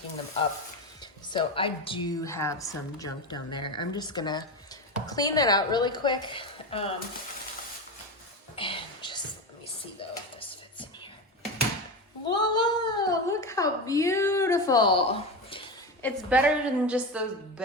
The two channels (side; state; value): both; normal; correlation 0.20